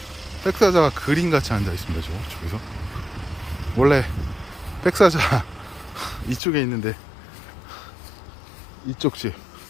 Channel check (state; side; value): drops out; right; at 6.4 s